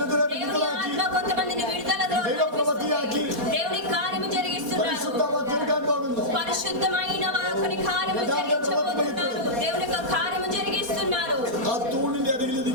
దేవుని വിടുതലാക്കി, ఆత్మ కొంతమందిని విడుదలలో ദൈവപ്രവൃത്തിയാക്കി, దేవుని కార్యము జరిగిస్తున్నారు. പരിശുദ്ധമാ തീർക്കാൻ പോകുന്നു. పరిశుద్ధమైన వారి కార్యము జరిగించబోతున్నారు. దేవుని యొక్క కార్యము జరిగిస్తున్నారు. ആ തൂണിന്റെ അരികിൽ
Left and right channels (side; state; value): left; late; 4.1 ms